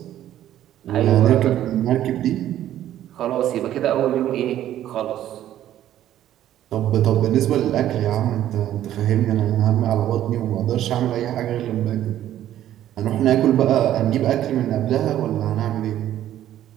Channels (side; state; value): left; quieter; 12.2 dB